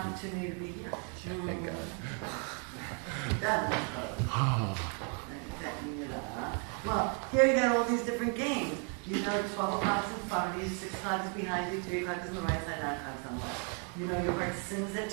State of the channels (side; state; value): left; quieter; 39.4 dB